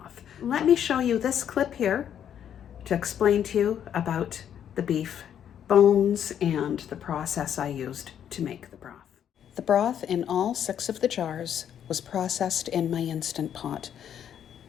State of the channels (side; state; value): right; quieter; 9.4 dB